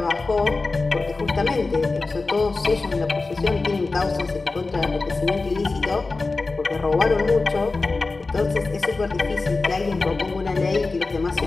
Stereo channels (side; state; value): right; quieter; 3.7 dB